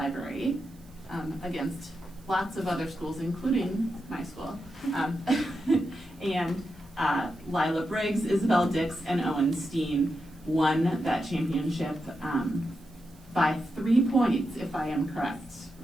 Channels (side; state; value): right; noise; hiss, 28 dB below the sound